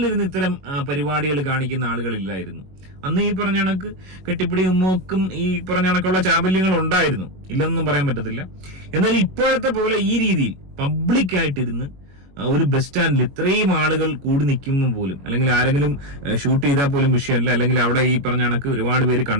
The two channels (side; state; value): left; late; 21 ms